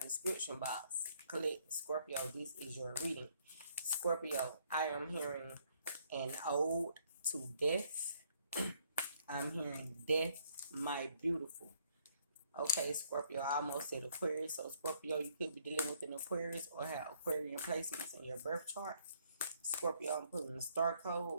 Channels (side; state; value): both; inverted; correlation -0.67